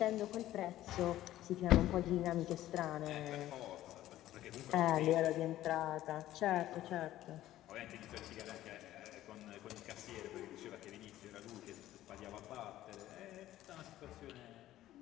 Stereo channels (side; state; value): right; quieter; 14.1 dB